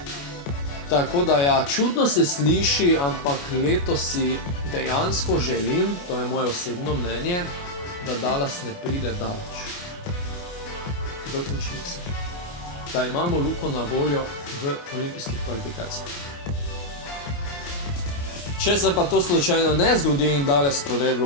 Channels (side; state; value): right; late; 28 ms